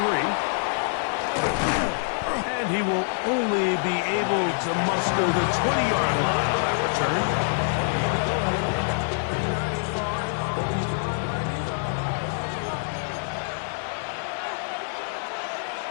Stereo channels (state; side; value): silent; right; digital silence